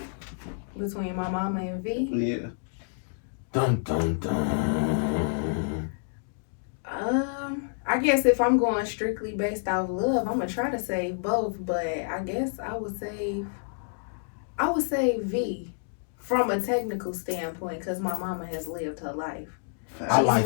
Between my mama and V. Yeah. Dun dun dun. I guess if I'm going strictly based off love, I'm gonna try to save both, but I guess I would save V from a technical standpoint because my mama has lived her life. I She's like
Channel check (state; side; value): silent; right; digital silence